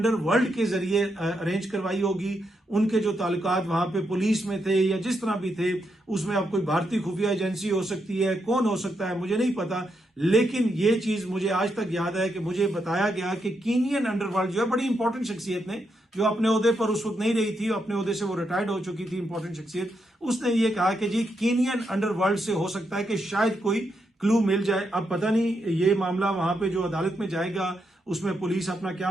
के जरिए अरेंज करवाई होगी। उनके जो ताल्लुकात वहां पे पुलिस में थे या जिस तरह भी थे, उसमें अब कोई भारतीय खुफिया एजेंसी हो सकती है, कौन हो सकता है मुझे नहीं पता, लेकिन ये चीज मुझे आज तक याद है कि मुझे बताया गया कि कीनियन अंडरवर्ल्ड जो है बड़ी इंपॉर्टेंट शख्सियत ने, जो अपने ओहदे पर उस वक्त नहीं रही थी, अपने ओहदे से वो रिटायर्ड हो चुकी थी, इंपॉर्टेंट शख्सियत, उसने ये कहा कि जी कीनियन अंडरवर्ल्ड से हो सकता है कि शायद कोई क्लू मिल जाए। अब पता नहीं ये मामला वहां पे जो अदालत में जाएगा उसमें पुलिस अपना क्या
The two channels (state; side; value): normal; both; correlation 0.82